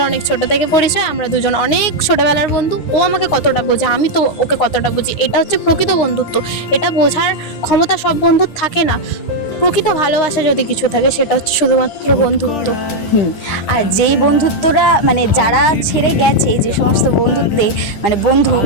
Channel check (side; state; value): right; late; 9.7 ms